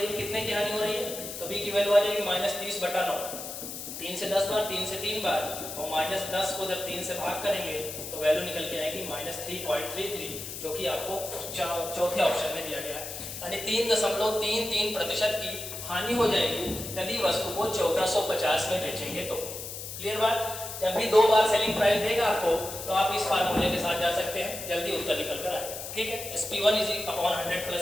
है, कितने की हानि हो रही है, तो बी की वैल्यू आ जाएगी -30/9, 3 से 10 बार, 3 से 3 बार, और -10 को जब 3 से भाग करेंगे तो वैल्यू निकल के आएगी -3.33, जो कि आपको चौथे ऑप्शन में दिया गया है, यानी 3.33% की हानि हो जाएगी यदि वस्तु को 1450 में बेचेंगे तो। क्लियर बात, जब भी दो बार सेलिंग प्राइस देगा आपको तो आप इस फार्मूले के साथ जा सकते हैं, जल्दी उत्तर निकल कर आएगा। ठीक है, SP1/100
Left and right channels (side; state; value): left; noise; hiss, 8 dB below the sound